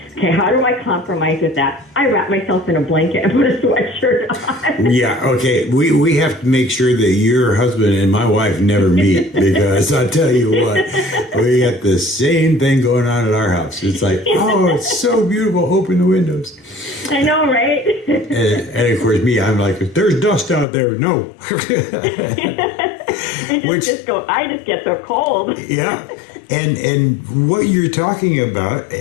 okay, how do I compromise with that? I wrap myself in a blanket and put a sweatshirt on. Yeah, okay. We have to make sure that your husband and my wife never meet, because I'll tell you what, we got the same thing going on in our house. It's like, oh, it's so beautiful. Open the windows. I know, right? And of course, me, I'm like, there's dust out there. No. I just get so cold. Yeah. And what you're talking about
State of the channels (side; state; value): right; drops out; at 20.7 s